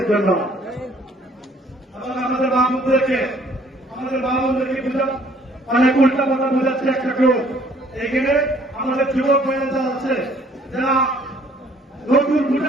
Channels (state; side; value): normal; both; correlation 0.59